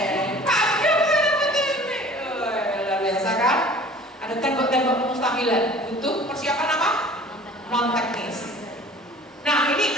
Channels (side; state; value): both; normal; correlation 0.47